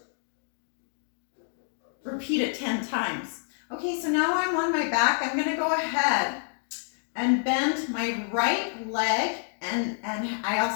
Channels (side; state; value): right; silent; digital silence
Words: repeat it 10 times. Okay, so now I'm on my back. I'm gonna go ahead and bend my right leg, and I